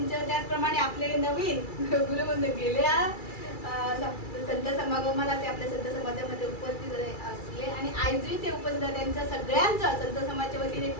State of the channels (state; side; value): late; right; 2.3 ms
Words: त्याचप्रमाणे आपले नवीन गुरुबंधू गेल्या संत समागमाला ते आपल्या संत समाजामध्ये उपस्थित असले आणि आजही ते उपस्थित आहे. त्यांच्या सगळ्यांचं संत समाजाच्या वतीने